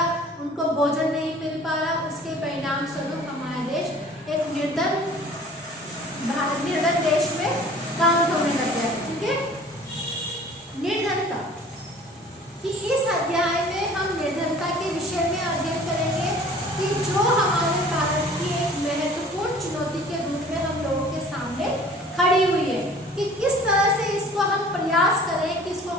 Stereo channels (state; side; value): normal; both; correlation 0.48